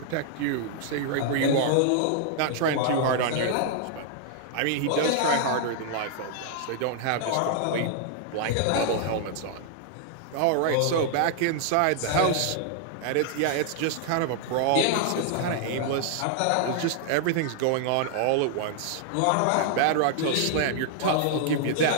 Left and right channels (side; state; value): both; different; correlation 0.00